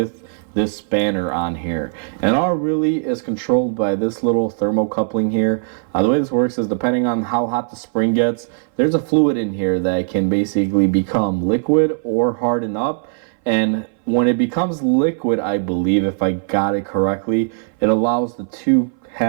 this spanner on here. And all really is controlled by this little thermocoupling here. The way this works is depending on how hot the spring gets, there's a fluid in here that can basically become liquid or harden up. And when it becomes liquid, I believe, if I got it correctly, it allows the two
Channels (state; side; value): silent; left; 61 dB below the other